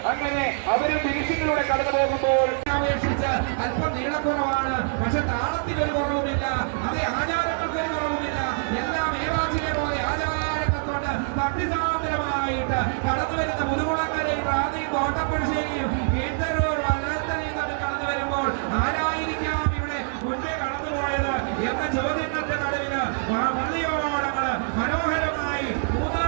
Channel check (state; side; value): silent; left; 62 dB below the other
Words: അങ്ങനെ അവർ ഫിനിഷിങ്ങിലൂടെ കടന്നു പോകുമ്പോൾ അപേക്ഷിച്ച് അല്പം നീളക്കുറവാണ്, പക്ഷെ താളത്തിനൊരു കുറവുമില്ല, അതേ ആചാരങ്ങൾക്കൊരു കുറവുമില്ല. എല്ലാം ഏവാചിനെ പോലെ ആചാരങ്ങൾ കൊണ്ട് ഭക്തിസാന്ദ്രമായിട്ട് കടന്നു വരുന്ന മുതുകുളക്കരയും റാന്നിയും കോട്ടപ്പുഴശ്ശേരിയും കീഴ്ത്തരൂർ വല്ലത്തലയും തമ്മിൽ കടന്നു വരുമ്പോൾ ആരായിരിക്കാം ഇവിടെ മുൻപേ കടന്നുപോയത് എന്ന ചോദ്യങ്ങളുടെ നടുവില് പള്ളിയോളങ്ങള് മനോഹരമായി